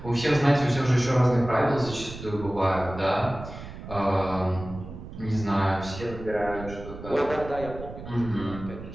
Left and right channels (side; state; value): right; noise; rumble, 12 dB below the sound